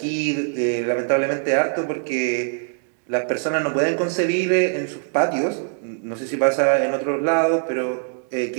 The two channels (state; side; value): silent; left; 64 dB below the other